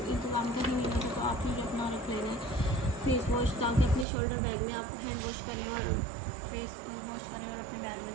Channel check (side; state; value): left; drops out; at 4.0 s